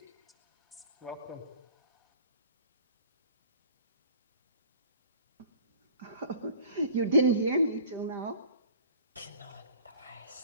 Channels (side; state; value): both; inverted; correlation -0.47